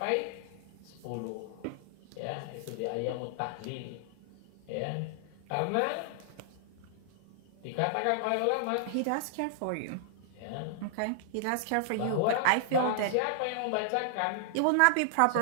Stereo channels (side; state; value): both; different; correlation -0.01